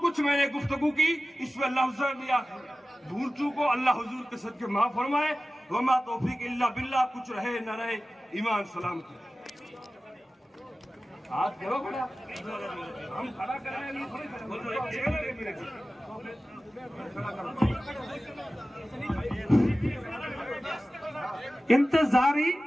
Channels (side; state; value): both; normal; correlation 0.96